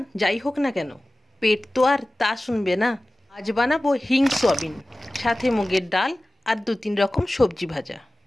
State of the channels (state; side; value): normal; both; correlation 0.97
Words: যাই হোক না কেন, পেট তো আর তা শুনবে না। আজ বানাবো হিং সয়াবিন, সাথে মুগের ডাল আর 2-3 রকম সবজি ভাজা।